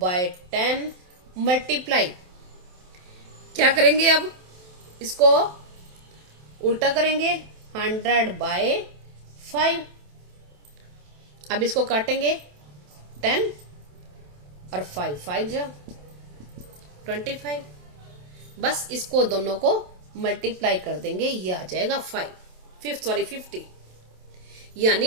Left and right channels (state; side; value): late; left; 27 ms